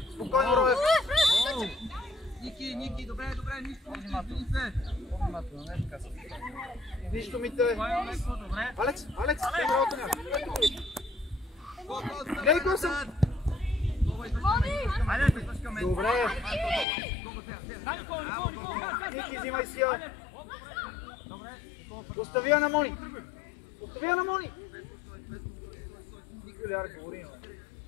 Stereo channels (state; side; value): drops out; right; at 16.9 s